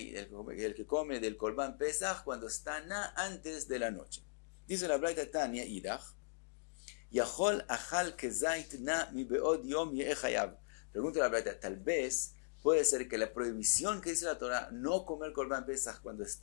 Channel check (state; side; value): silent; right; digital silence